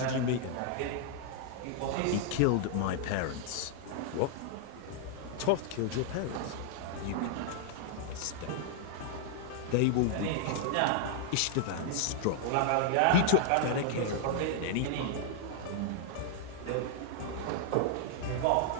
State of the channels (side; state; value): both; different; correlation 0.00